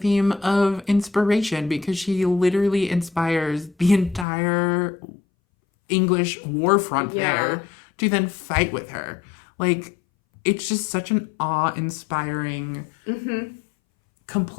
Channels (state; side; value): drops out; right; at 4.2 s